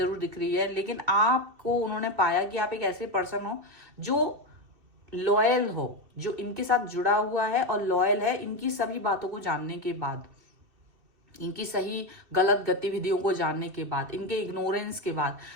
दिख रही है। लेकिन आपको उन्होंने पाया कि आप एक ऐसे पर्सन हो जो लॉयल हो, जो इनके साथ जुड़ा हुआ है और लॉयल है इनकी सभी बातों को जानने के बाद, इनकी सही गलत गतिविधियों को जानने के बाद, इनके इग्नोरेंस के बाद,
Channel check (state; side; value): late; left; 2.7 ms